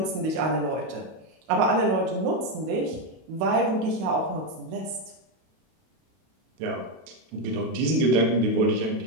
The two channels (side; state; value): left; late; 32 ms